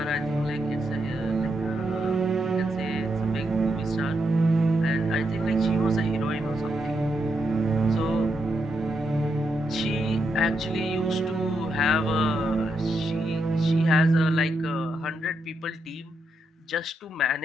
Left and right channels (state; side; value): normal; both; correlation 0.81